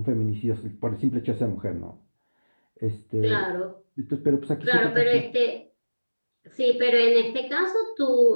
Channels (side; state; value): both; inverted; correlation -1.00